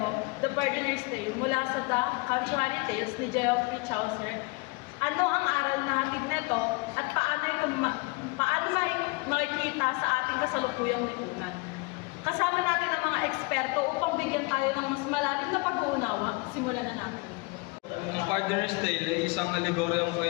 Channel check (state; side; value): quieter; right; 27.3 dB